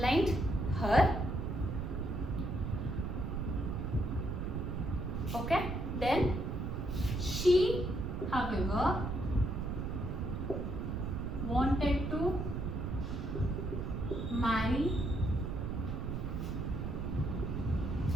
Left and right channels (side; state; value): right; noise; rumble, 3 dB below the sound